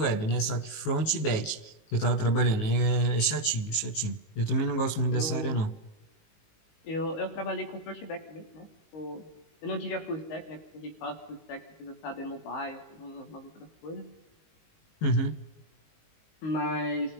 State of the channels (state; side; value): late; right; 19 ms